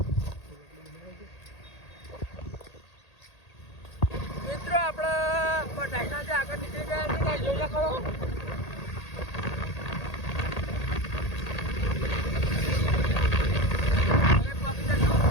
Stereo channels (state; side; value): late; right; 1.8 ms